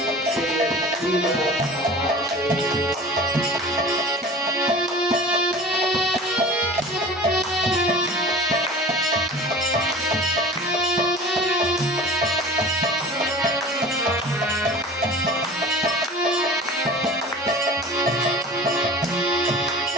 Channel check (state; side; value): normal; both; correlation 0.40